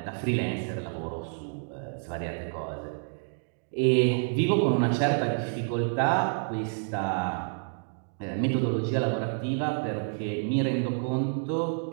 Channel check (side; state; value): left; silent; 58 dB below the other